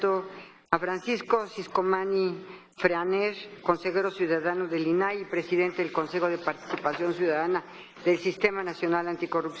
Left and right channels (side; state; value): both; identical; correlation 1.00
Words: A Francisco Ciscomani Freaner, consejero ciudadano del INAI y presidente del Consejo de Participación Ciudadana del Sistema Nacional